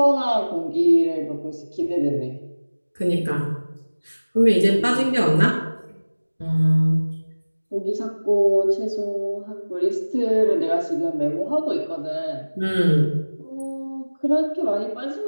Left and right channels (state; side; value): inverted; both; correlation -1.00